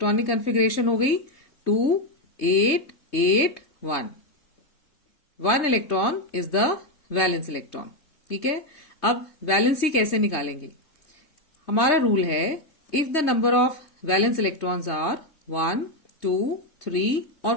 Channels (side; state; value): right; late; 3.2 ms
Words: कन्फिग्रेशन हो गई 2, 8, 8, 1। 1 electron is the valence electron. ठीक है, अब वैलेंसी कैसे निकालेंगे? हमारा रूल है, if the number of valence electrons are 1, 2, 3 और